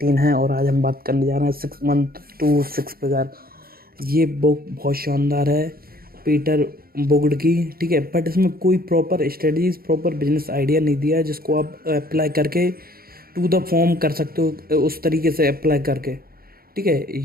है और आज हम बात करने जा रहे हैं 6 मंथ टू 6 फिगर। ये बुक बहुत शानदार है, पीटर बुगड की, ठीक है। बट इसमें कोई proper strategies, proper business idea नहीं दिया है जिसको आप अप्लाई करके टू द फॉर्म कर सकते हो, उस तरीके से अप्लाई करके, ठीक है।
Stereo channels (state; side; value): late; left; 0.43 ms